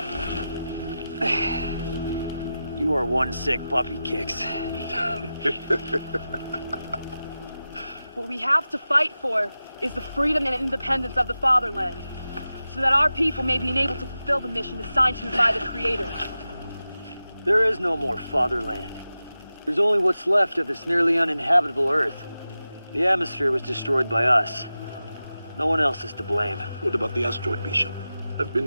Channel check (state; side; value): inverted; both; correlation -0.93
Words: You are one sick puppy, Kicks. What we have to fight for is the freedom and independence of the fatherland, so that our people may be enabled to fulfill the mission assigned to us by the Creator. There is no more fatherland. There's only what's left of this nearly uninhabitable Earth. The atmosphere was destroyed by us. No one else is to blame. What about the asteroid, Bishop? I've